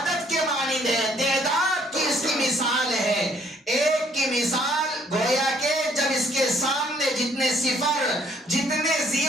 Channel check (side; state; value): both; normal; correlation 0.63